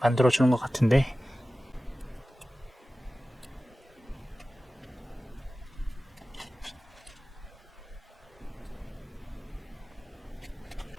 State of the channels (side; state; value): both; normal; correlation 0.96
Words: 만들어주는 것 같은데